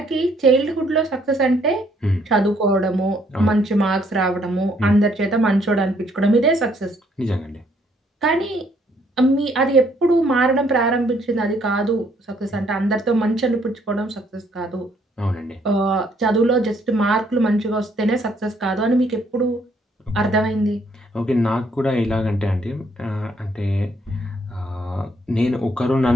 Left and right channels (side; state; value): both; normal; correlation 0.68